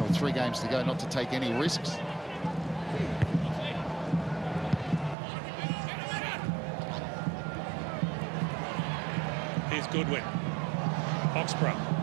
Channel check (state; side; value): drops out; left; at 5.2 s